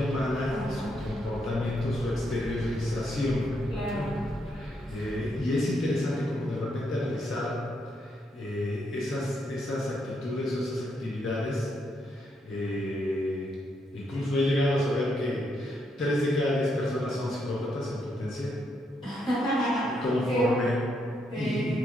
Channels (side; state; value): both; normal; correlation 0.78